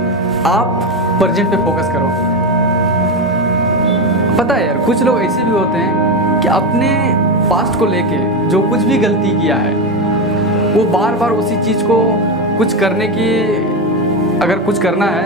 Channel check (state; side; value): normal; both; correlation 0.14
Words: आप प्रेजेंट पे फोकस करो। पता है यार, कुछ लोग ऐसे भी होते हैं कि अपने पास्ट को लेके जो कुछ भी गलती किया है, वो बार बार उसी चीज़ को कुछ करने की, अगर कुछ करना